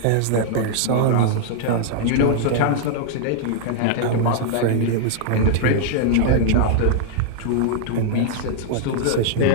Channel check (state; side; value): different; both; correlation -0.01